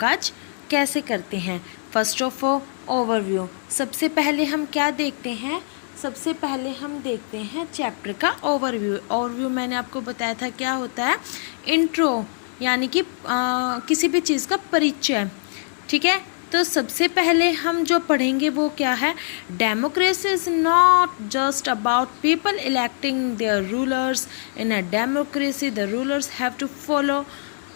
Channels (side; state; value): right; silent; digital silence